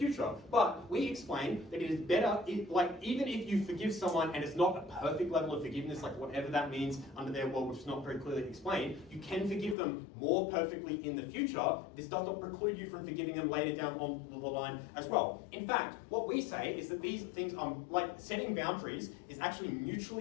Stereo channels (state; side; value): drops out; right; at 9.8 s